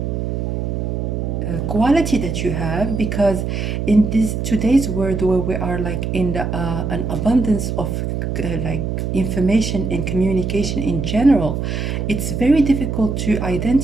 quality that you have, because in this today's world where we are like in the, an abundance of like information and communication in general, it's very difficult to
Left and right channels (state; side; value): noise; right; hum, 2 dB below the sound